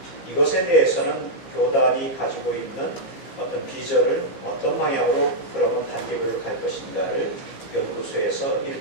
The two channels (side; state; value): right; late; 15 ms